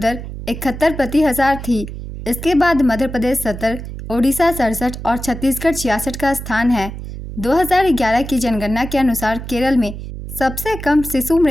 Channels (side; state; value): right; noise; hum, 9 dB below the sound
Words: 71 प्रति 1000 थी। इसके बाद मध्य प्रदेश 70, ओडिशा 67 और छत्तीसगढ़ 66 का स्थान है। 2011 की जनगणना के अनुसार केरल में सबसे कम शिशु